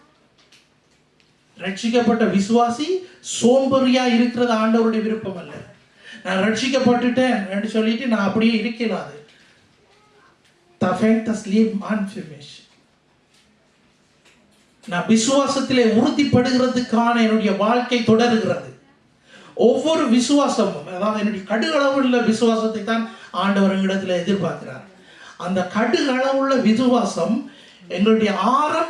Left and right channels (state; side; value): identical; both; correlation 1.00